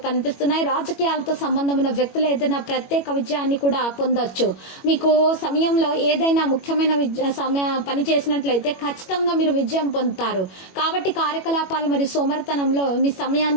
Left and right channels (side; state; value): right; late; 21 ms